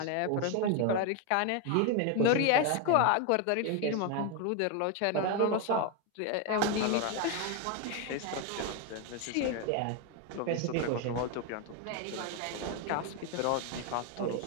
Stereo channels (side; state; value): both; different; correlation 0.01